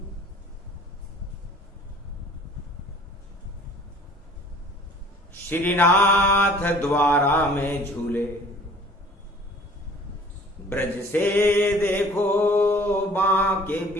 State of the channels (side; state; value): both; normal; correlation 0.50